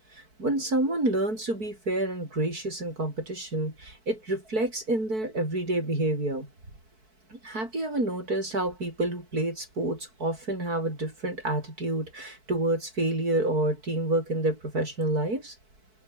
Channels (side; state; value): left; late; 4.6 ms